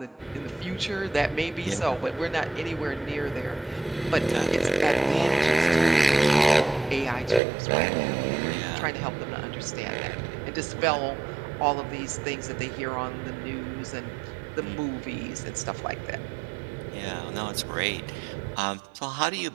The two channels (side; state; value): left; drops out; at 7.4 s